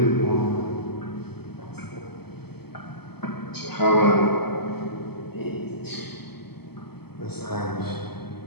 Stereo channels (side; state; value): right; late; 0.96 ms